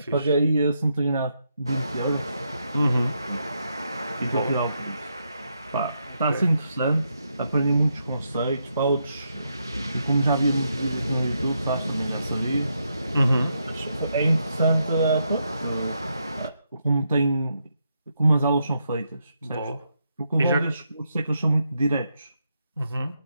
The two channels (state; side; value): inverted; both; correlation -0.80